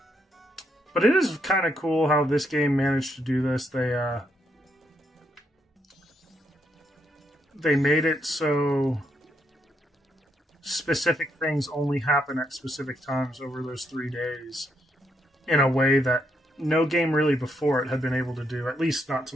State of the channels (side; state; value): both; normal; correlation 0.77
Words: But it is kind of cool how this game managed to do this. They made it so specific things only happen at specific times over those 3 days in a way that no game really before it had been able to do, at least not to